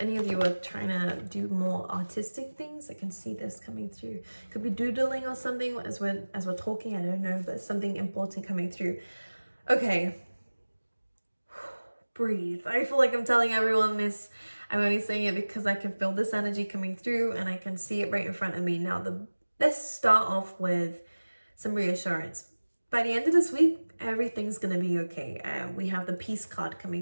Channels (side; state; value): both; inverted; correlation -1.00